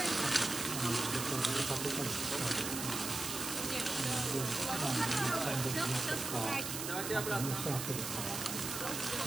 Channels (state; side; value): noise; right; hiss, 4 dB below the sound